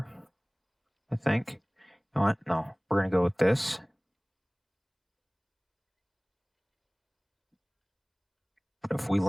I think. You know what? No, we're going to go with this. But if we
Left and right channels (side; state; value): both; identical; correlation 1.00